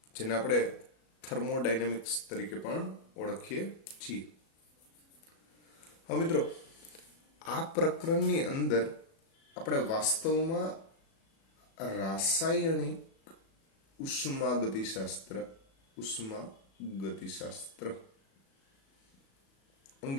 જેને આપણે થર્મોડાયનેમિક્સ તરીકે પણ ઓળખીએ છીએ. હવે મિત્રો, આ પ્રકરણની અંદર આપણે વાસ્તવમાં રાસાયણિક ઉષ્મા ગતિશાસ્ત્ર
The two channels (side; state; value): right; late; 37 ms